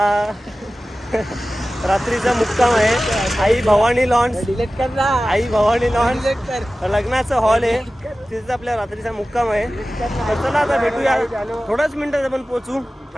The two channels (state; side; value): normal; both; correlation 0.96